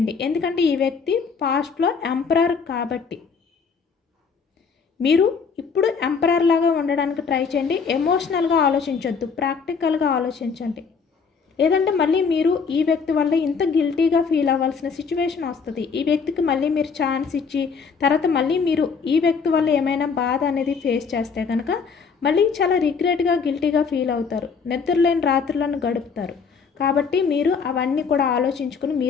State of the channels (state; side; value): quieter; right; 5.6 dB